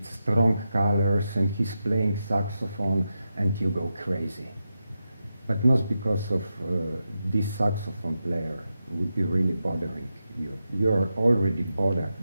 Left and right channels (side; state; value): both; inverted; correlation -0.89